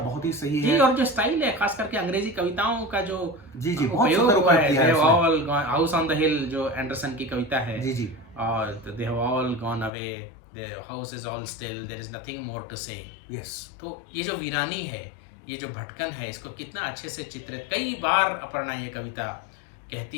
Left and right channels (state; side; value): drops out; right; at 9.9 s